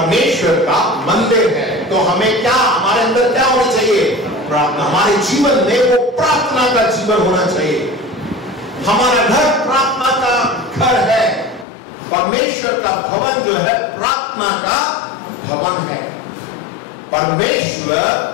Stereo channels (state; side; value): drops out; right; at 11.7 s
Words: का मंदिर है, तो हमें क्या, हमारे अंदर क्या होना चाहिए? प्रार्थना। हमारे जीवन में वो प्रार्थना का जीवन होना चाहिए। हमारा घर प्रार्थना का घर है। परमेश्वर का भवन जो है प्रार्थना का भवन है।